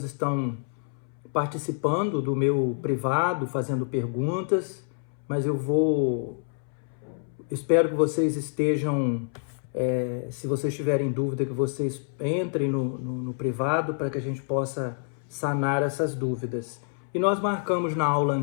estão participando do meu privado, fazendo perguntas, mas espero que vocês estejam, se vocês tiverem dúvida, que vocês entrem no privado para que a gente possa sanar essas dúvidas. E nós marcamos na aula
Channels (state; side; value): silent; right; 60 dB below the other